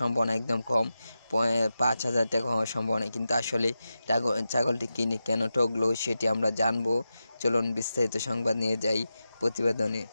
একদম কম, 5,000 টাকা হওয়ার সম্ভাবনা। কিন্তু আসলে ছাগলটি কিনে কেন ঠকলো সেটি আমরা জানবো। চলুন বিস্তারিত সংবাদ নিয়ে যাই প্রতিবেদনে।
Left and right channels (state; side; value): inverted; both; correlation -0.91